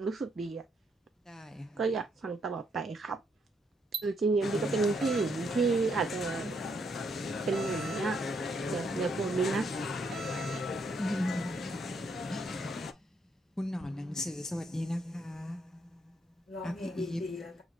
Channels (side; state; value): both; normal; correlation 0.74